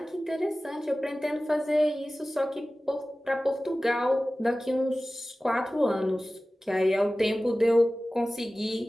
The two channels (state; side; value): normal; both; correlation 0.96